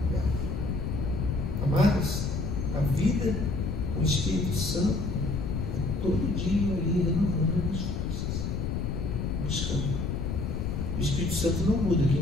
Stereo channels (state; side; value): noise; left; rumble, 1 dB below the sound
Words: véu. Amados, a vida com o Espírito Santo é todo dia ali renovando as forças, buscando. O Espírito Santo não muda,